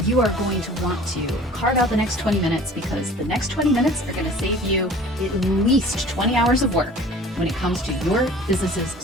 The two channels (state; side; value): normal; both; correlation 0.46